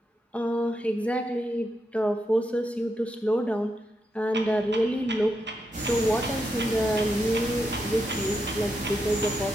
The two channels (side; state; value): both; normal; correlation 0.83